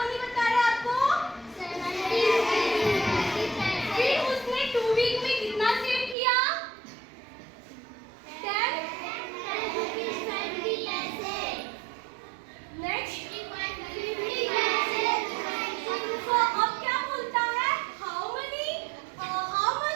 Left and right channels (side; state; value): left; drops out; at 6.2 s